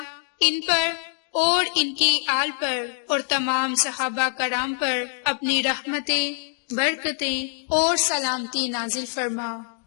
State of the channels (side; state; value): right; silent; 62 dB below the other